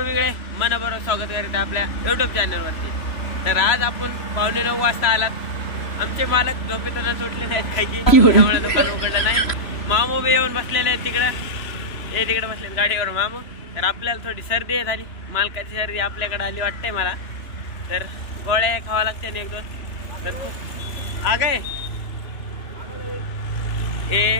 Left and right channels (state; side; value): late; right; 3.0 ms